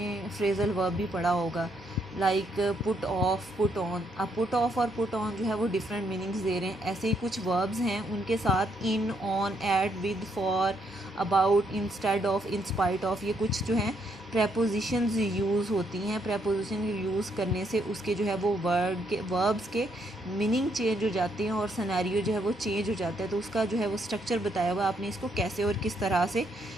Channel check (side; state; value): both; normal; correlation 0.74